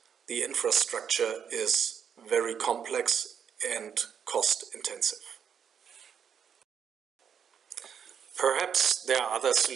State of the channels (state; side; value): quieter; left; 7.8 dB